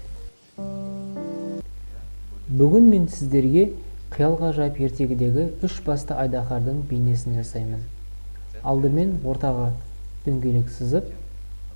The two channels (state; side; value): inverted; both; correlation -1.00